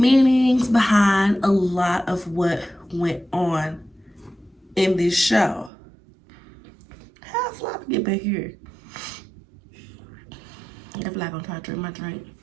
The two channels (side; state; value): left; drops out; at 5.7 s